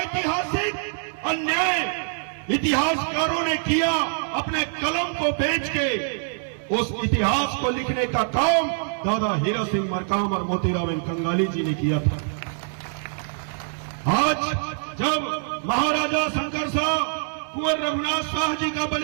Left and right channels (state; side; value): silent; left; 62 dB below the other